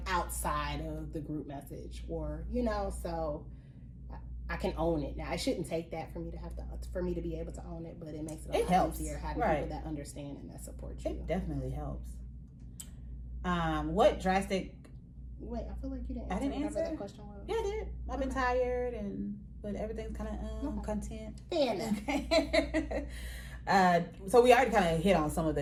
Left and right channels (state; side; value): identical; both; correlation 1.00